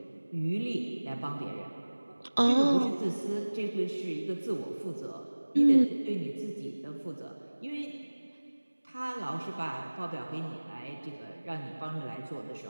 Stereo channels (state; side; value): inverted; both; correlation -1.00